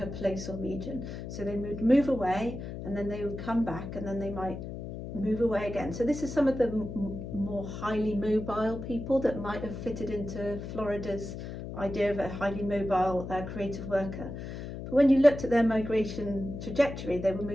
place or region. So they would move away and then they would come back and then they might move away again. So this is some of the more highly mobile people that might have fitted into Florida's idea of a highly mobile creative worker. But when you looked at their migration trajectory, they were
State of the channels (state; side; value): noise; left; hum, 8 dB below the sound